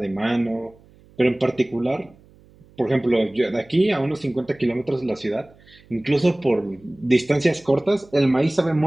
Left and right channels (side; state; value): right; noise; hum, 28 dB below the sound